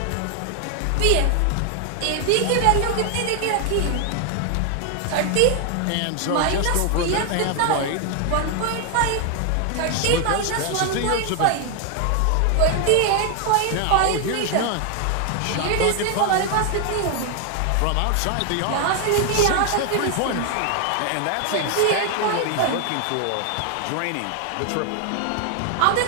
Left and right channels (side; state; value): both; different; correlation 0.00